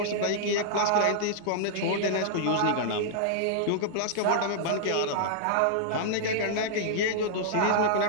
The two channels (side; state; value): both; different; correlation -0.01